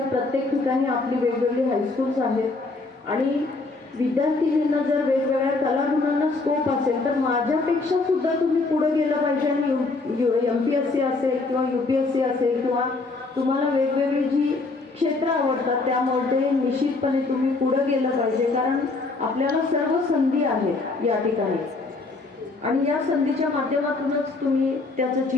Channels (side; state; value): right; quieter; 3.6 dB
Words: प्रत्येक ठिकाणी आपली वेगवेगळी हायस्कूल्स आहेत, आणि विद्यार्थिनींना जर वेगवेगळ्या कलागुणांना स्कोप असेल तर माझ्यापेक्षा सुद्धा तुम्ही पुढे गेलं पाहिजे. आणि MPSC असेल किंवा UPSC असेल किंवा तुम्हाला वेगवेगळी जी क्षेत्र आवडतात त्यामध्ये निश्चितपणे तुम्ही पुढे गेलं पाहिजे, कारण आपल्याला सर्व संधी आहेत या ठिकाणी, आणि या संधीच्या माध्यमातूनच तुम्ही त्याचं